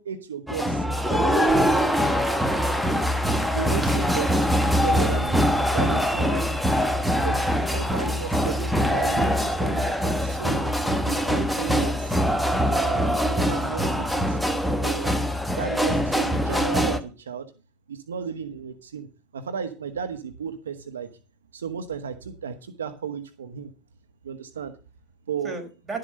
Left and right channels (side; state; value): both; normal; correlation 0.71